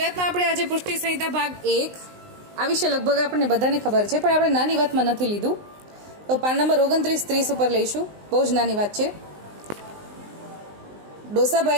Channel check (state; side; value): late; left; 19 ms